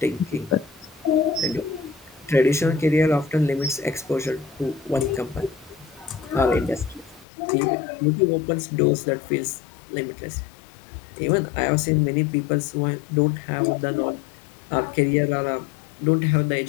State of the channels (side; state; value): right; drops out; at 7.2 s